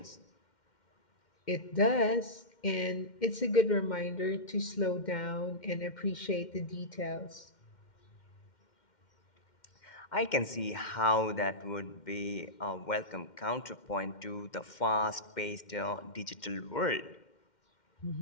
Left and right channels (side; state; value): right; late; 2.1 ms